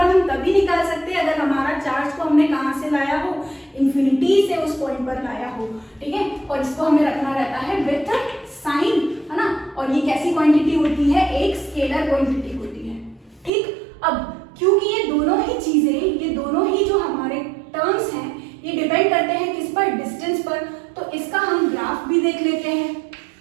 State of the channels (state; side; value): drops out; left; at 13.5 s